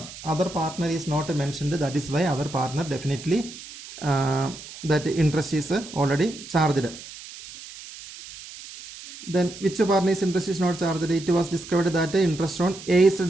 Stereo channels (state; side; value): noise; right; hiss, 15 dB below the sound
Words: Other partner is not mentioned. That is why other partner definitely that interest is already charged. Then which partner's interest is not charged? It was discovered that the interest on A's